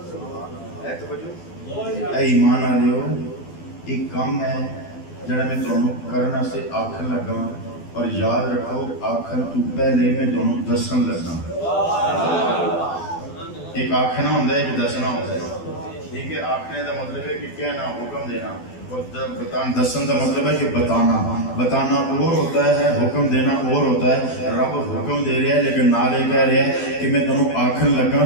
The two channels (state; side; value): late; right; 12 ms